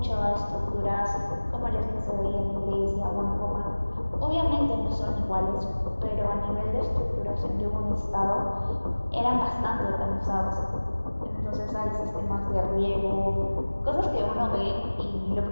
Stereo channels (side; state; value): both; inverted; correlation -1.00